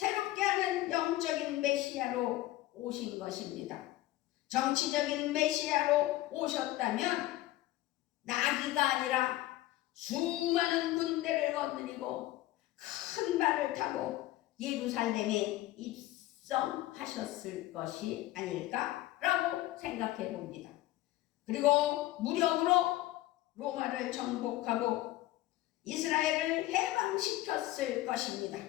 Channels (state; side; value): quieter; right; 16.3 dB